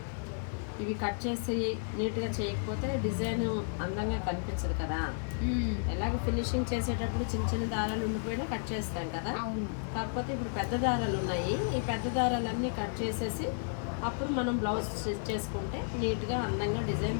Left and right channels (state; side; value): silent; right; digital silence